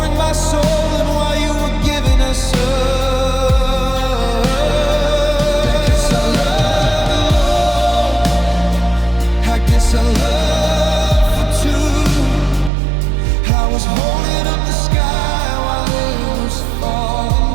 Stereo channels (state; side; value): drops out; left; at 12.7 s